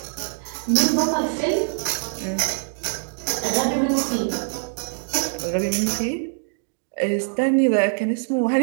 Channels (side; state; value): left; silent; digital silence